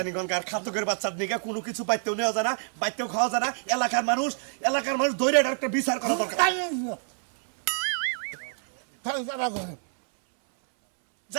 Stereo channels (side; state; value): left; silent; 60 dB below the other